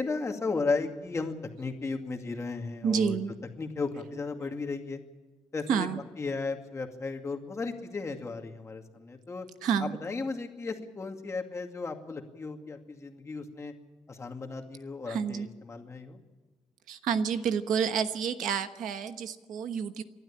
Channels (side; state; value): both; normal; correlation 0.70